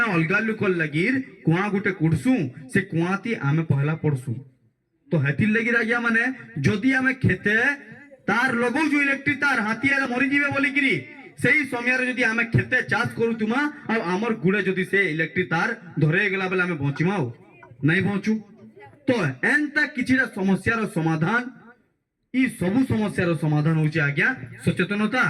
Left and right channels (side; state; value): both; identical; correlation 1.00